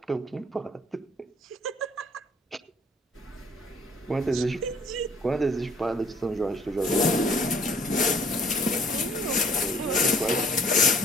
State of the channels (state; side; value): normal; both; correlation 0.58